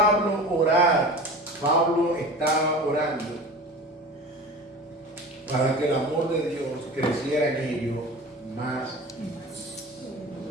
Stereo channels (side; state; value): both; normal; correlation 0.35